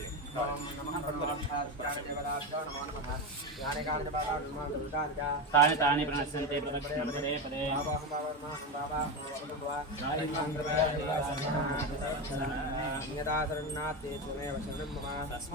ओम नमः भगवत्पाददेवताभ्यो नमो नमः ज्ञानकाल तानि तानि प्रणश्यन्ते प्रदक्षिणं पदे पदे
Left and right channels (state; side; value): normal; both; correlation 0.16